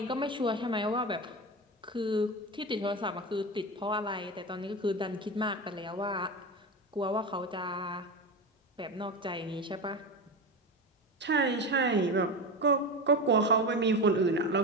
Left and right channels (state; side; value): normal; both; correlation 0.22